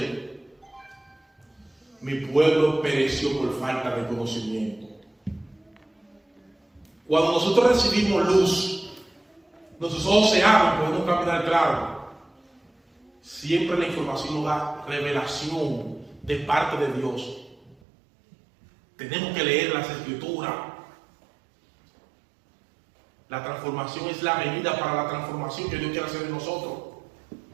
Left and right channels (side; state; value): left; drops out; at 17.8 s